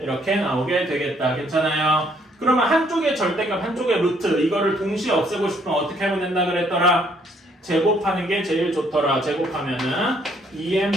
이렇게 나오게 되겠다. 괜찮아요? 그러면 한쪽에 절대값, 한쪽에 루트 이거를 동시에 없애고 싶으면 어떻게 하면 된다 그랬더라? 제곱하는 게 제일 좋더라. 제곱하면은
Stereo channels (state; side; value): normal; both; correlation 0.66